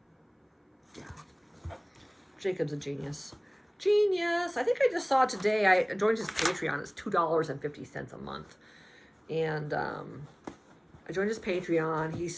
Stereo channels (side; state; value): both; identical; correlation 1.00